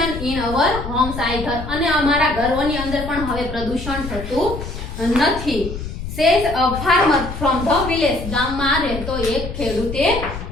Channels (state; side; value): noise; left; rumble, 8 dB below the sound